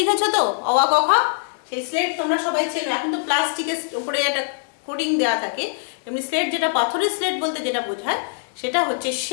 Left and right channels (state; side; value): silent; right; 62 dB below the other